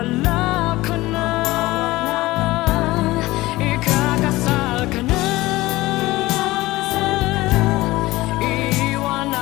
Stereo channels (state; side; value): quieter; right; 18.9 dB